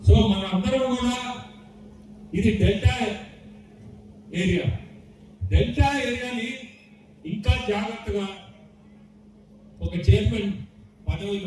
సో మనందరం కూడా ఇది డెల్టా ఏరియాని ఇంకా జాగ్రత్తగా ఒక చైర్మన్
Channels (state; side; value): identical; both; correlation 1.00